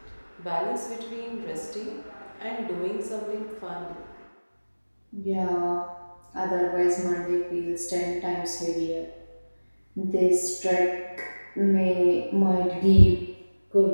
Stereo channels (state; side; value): inverted; both; correlation -1.00